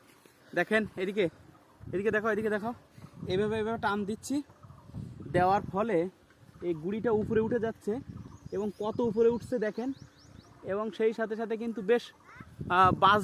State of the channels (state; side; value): identical; both; correlation 1.00